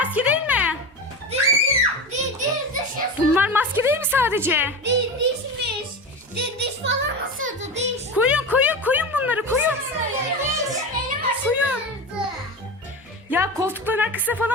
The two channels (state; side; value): normal; both; correlation 0.25